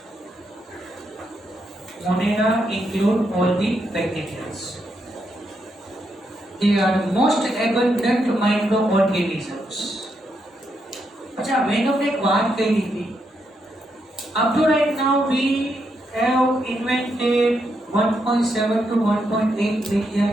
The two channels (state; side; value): normal; both; correlation 0.80